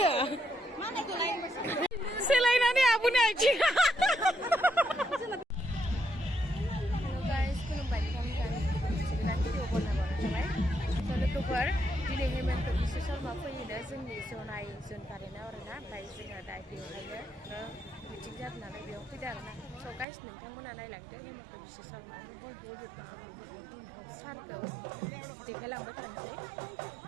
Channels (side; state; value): left; drops out; at 20.1 s